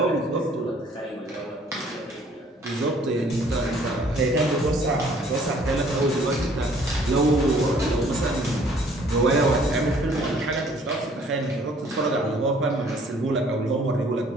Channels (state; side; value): normal; both; correlation 0.58